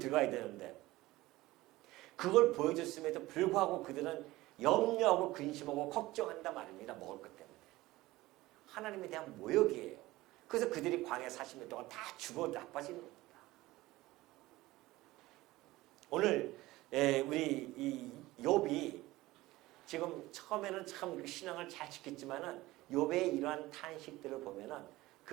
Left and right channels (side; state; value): left; quieter; 18.4 dB